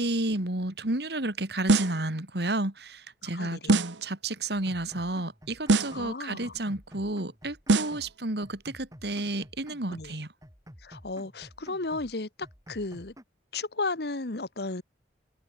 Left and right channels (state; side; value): normal; both; correlation 0.43